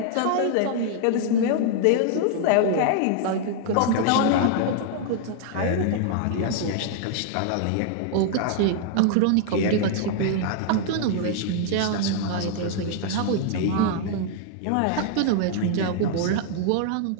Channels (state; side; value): different; both; correlation -0.01